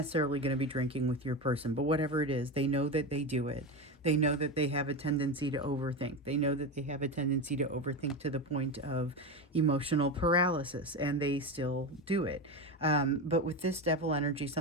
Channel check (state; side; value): normal; both; correlation 0.19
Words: going to be drinking with your person, but whatever it is, they know that they do it. They know that they have a tendency to overthink. They know that they have a tendency to overthink to the point of emotional paralysis, and they still do it. But with this Devil energy,